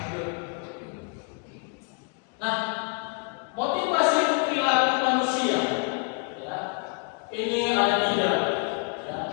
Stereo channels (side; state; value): right; quieter; 36.5 dB